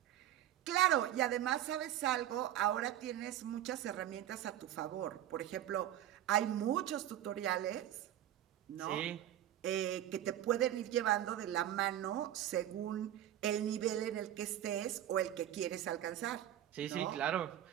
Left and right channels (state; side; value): quieter; left; 11.9 dB